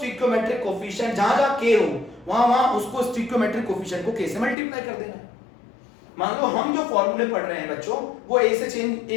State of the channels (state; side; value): drops out; right; at 4.5 s